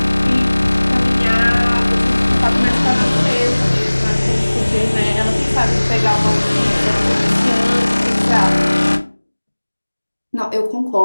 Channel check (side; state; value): both; inverted; correlation -1.00